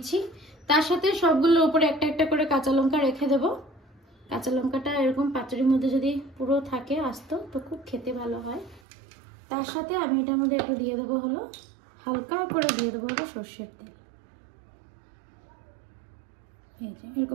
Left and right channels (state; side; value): drops out; left; at 8.8 s